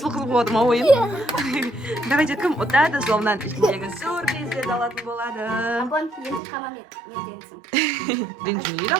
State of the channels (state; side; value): drops out; left; at 6.4 s